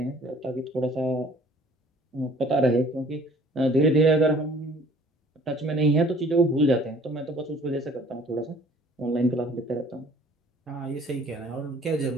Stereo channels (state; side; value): normal; both; correlation 0.54